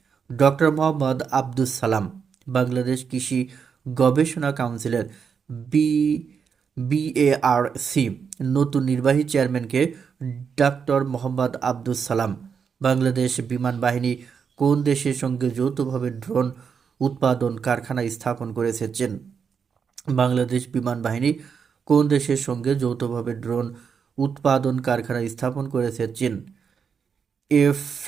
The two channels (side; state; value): left; quieter; 6.4 dB